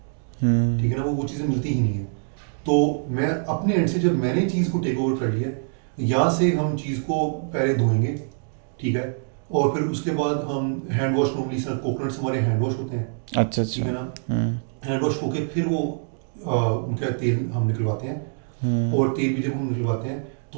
ٹھیک ہے نا, وہ چیزیں ملتی ہی نہیں ہیں. تو میں اپنے اینڈ سے جب میں نے چیز کو ٹیک اوور کر لیا یہاں سے ہم چیز کو پہلے دھوئیں گے, ٹھیک ہے, اور پھر اس کے بعد ہم ہینڈ واش, نارملی سر کوکونٹس ہمارے ہینڈ واش ہوتے ہیں, اچھا ٹھیک ہے نا, ہینڈ واش ہو کے پھر وہ ان کا تیل ہم نکلواتے ہیں, اور تیل بھی جب ہم نکلواتے ہیں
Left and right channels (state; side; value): silent; left; digital silence